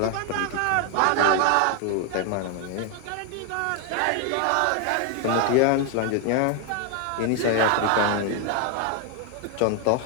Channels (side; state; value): both; different; correlation 0.01